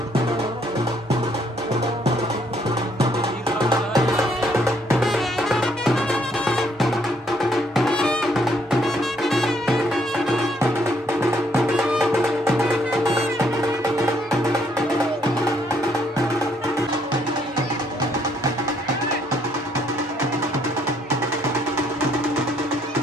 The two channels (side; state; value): both; normal; correlation 0.69